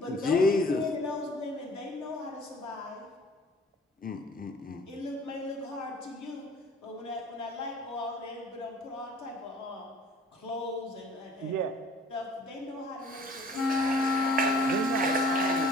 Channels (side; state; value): both; normal; correlation 0.51